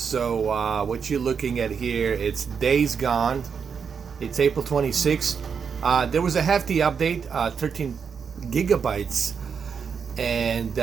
what you're looking at here, it's Days Gone. It's April 26th. There was a hefty update, 13 gigabytes, and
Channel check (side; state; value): left; quieter; 6.4 dB